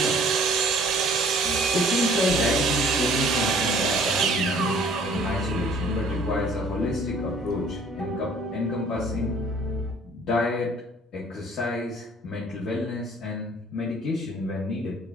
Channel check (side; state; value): both; normal; correlation 0.55